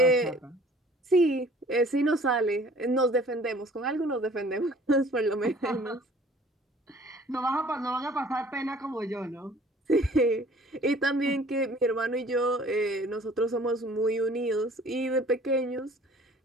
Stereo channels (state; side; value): normal; both; correlation 0.52